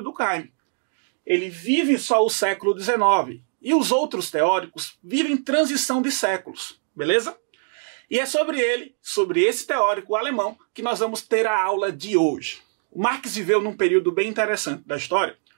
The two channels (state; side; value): silent; left; 62 dB below the other